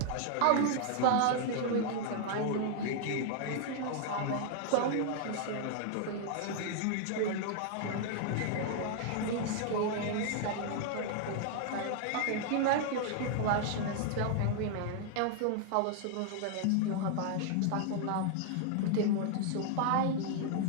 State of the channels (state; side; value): different; both; correlation 0.00